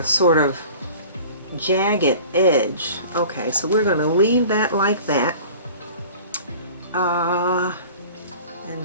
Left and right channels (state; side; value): inverted; both; correlation -0.43